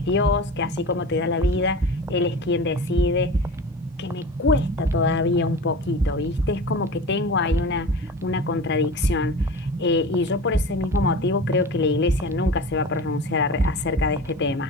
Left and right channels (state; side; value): normal; both; correlation 0.33